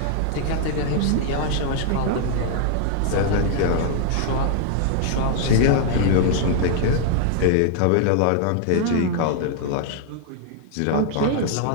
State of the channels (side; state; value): both; different; correlation 0.00